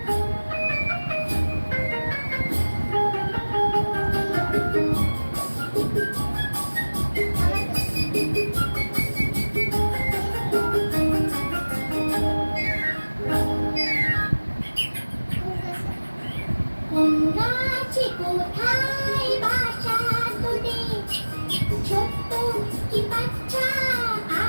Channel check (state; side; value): inverted; both; correlation -1.00